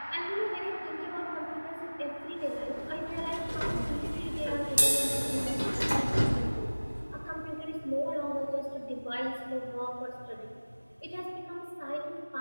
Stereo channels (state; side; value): inverted; both; correlation -1.00